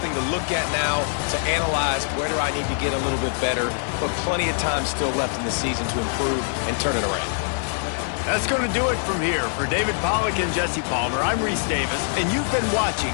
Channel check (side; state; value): right; silent; digital silence